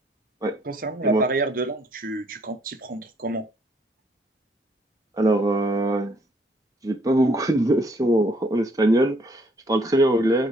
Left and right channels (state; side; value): normal; both; correlation 0.66